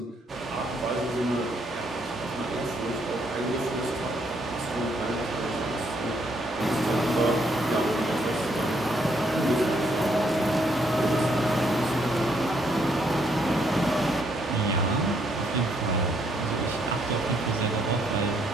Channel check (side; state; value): both; normal; correlation 0.72